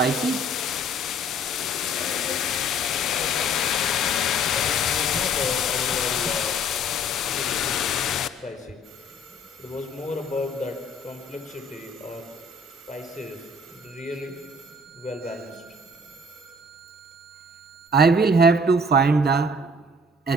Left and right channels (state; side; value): normal; both; correlation 0.55